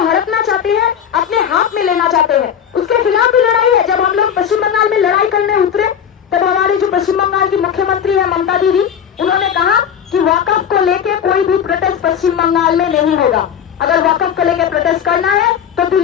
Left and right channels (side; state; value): right; quieter; 8.5 dB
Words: हड़पना चाहती है, अपने हाथ में लेना चाहते हैं। उसके खिलाफ भी लड़ाई है। जब हम लोग पश्चिम बंगाल में लड़ाई करने उतरे तब हमारी जो पश्चिम बंगाल की मुख्यमंत्री है ममता दीदी, उन्होंने कहा कि वक्फ को लेके कोई भी प्रोटेस्ट पश्चिम बंगाल में नहीं होगा। अगर वक्फ को लेकर प्रोटेस्ट करना है तो